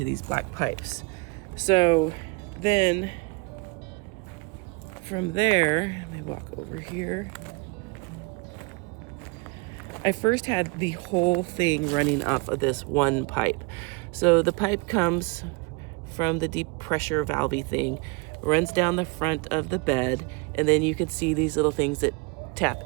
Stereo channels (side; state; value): left; quieter; 28.2 dB